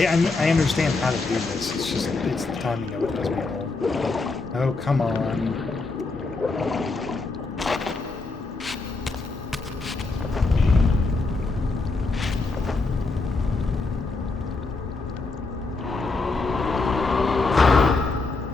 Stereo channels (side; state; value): right; quieter; 3.7 dB